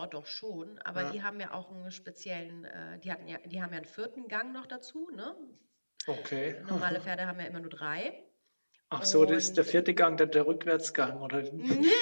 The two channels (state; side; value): inverted; both; correlation -1.00